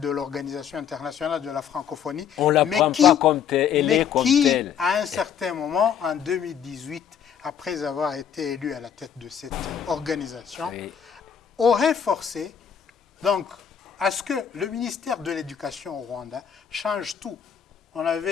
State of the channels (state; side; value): quieter; right; 8.2 dB